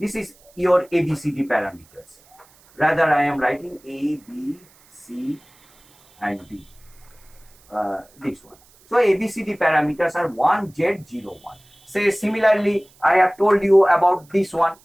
is your ABCD parameters. Rather, I am writing A, B, C and D. This one. So ABCD parameters are 1Z01. Say similarly, I have told you about this one.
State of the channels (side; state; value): right; noise; hiss, 29 dB below the sound